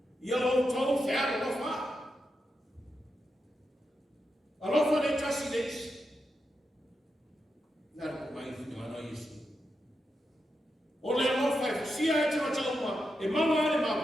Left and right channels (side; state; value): both; normal; correlation 0.87